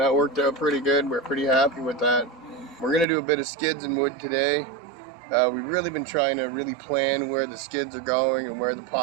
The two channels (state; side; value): drops out; left; at 3.1 s